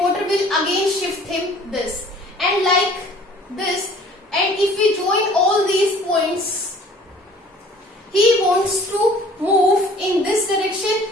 will again shift him this, and like this. And if we join all these points, he wants to move in this direction.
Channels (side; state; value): both; normal; correlation 0.51